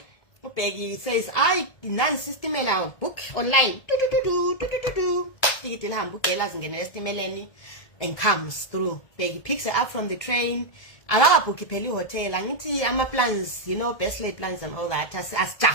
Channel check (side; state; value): right; late; 1.7 ms